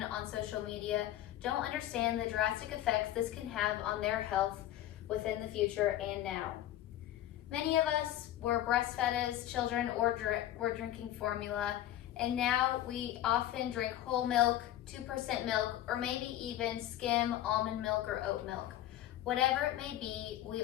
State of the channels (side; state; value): right; quieter; 13.0 dB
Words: on social media don't understand the drastic effects this can have on their health within the future and now. Many of us were breastfed as children or were drinking formula, and now we often drink whole milk, 2% milk, or maybe even skim almond milk or oat milk. Whatever it may be, we